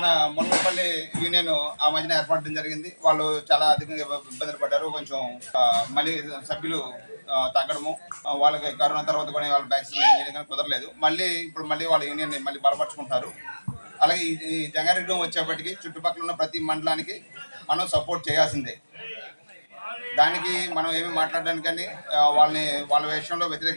మునగపల్లి యూనియన్ ఆ మధ్యన ఏర్పడడం జరిగింది. వాళ్ళు చాలా అధికంగా ఇబ్బందులు పడ్డారు. కొంచెం మళ్ళీ సభ్యులు తగ్గడము, వాళ్ళకి కరోనా తర్వాత కూడా వాళ్ళ వ్యాక్సినేషన్ చేయడం కానీ కుదరలేదు. ఇప్పుడు మళ్ళీ వాళ్ళ యూనియన్ మళ్ళీ బలపరుచుకుంటారు. అలాగే ఈ జంగారెడ్డిగూడెం వచ్చేప్పటికి చుట్టుపక్కల ఉన్న ప్రతి మండలానికి మనం సపోర్ట్ చేయాల్సిందే. దానికి మనం ఏమి మాట్లాడడానికి కానీ వాళ్ళ విషయంలో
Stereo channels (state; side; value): inverted; both; correlation -1.00